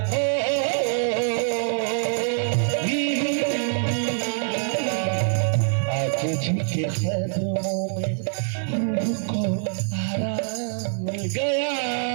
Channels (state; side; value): silent; left; digital silence